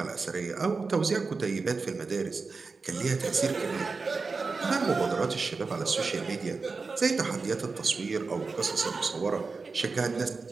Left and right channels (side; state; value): left; quieter; 4.3 dB